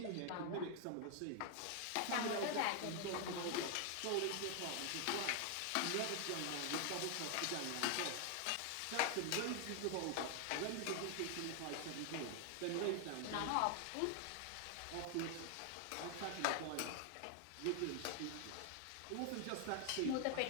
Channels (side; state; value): both; different; correlation 0.00